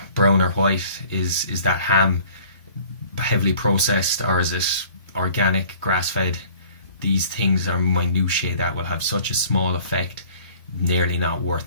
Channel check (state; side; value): inverted; both; correlation -0.51